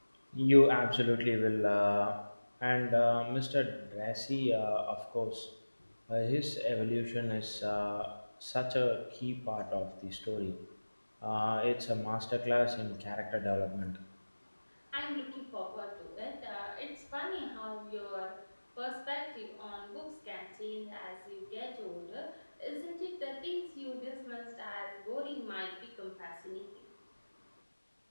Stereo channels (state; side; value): inverted; both; correlation -1.00